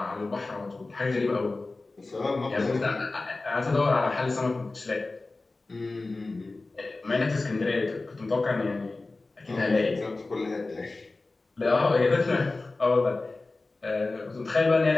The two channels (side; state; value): right; quieter; 3.3 dB